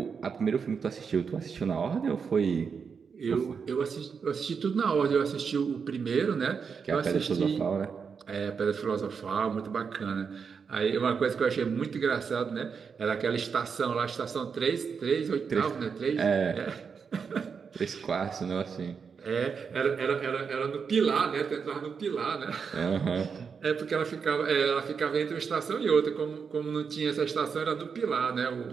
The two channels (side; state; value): left; quieter; 6.0 dB